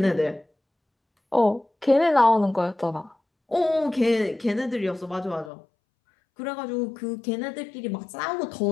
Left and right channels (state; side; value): drops out; right; at 5.5 s